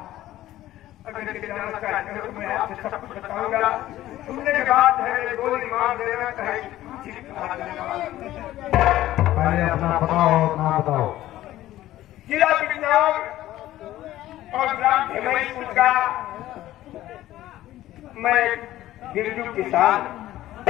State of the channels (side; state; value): right; quieter; 14.5 dB